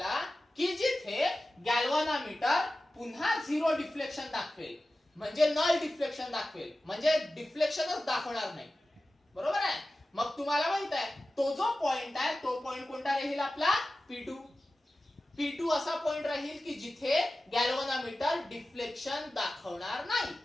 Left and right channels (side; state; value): both; normal; correlation 0.95